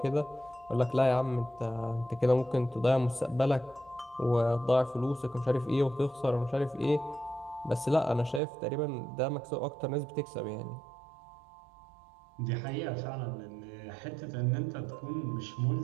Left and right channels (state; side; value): drops out; left; at 8.4 s